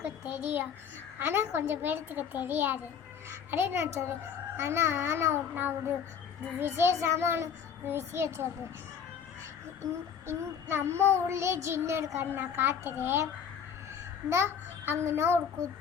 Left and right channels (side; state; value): right; quieter; 7.4 dB